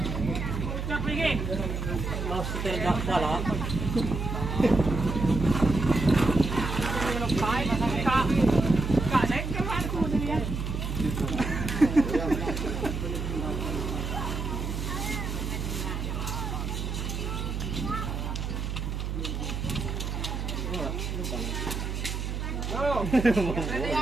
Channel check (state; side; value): noise; right; hum, 3 dB below the sound